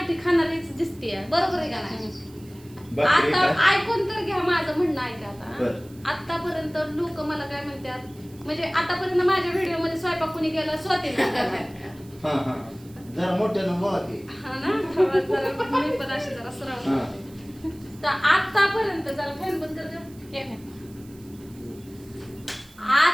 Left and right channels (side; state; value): right; noise; hiss, 25 dB below the sound